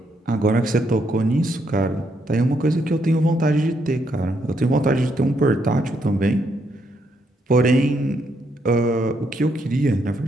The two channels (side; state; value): both; normal; correlation 0.76